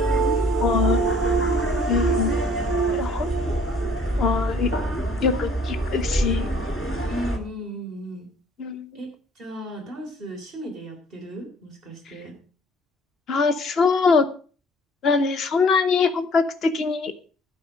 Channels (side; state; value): both; normal; correlation 0.56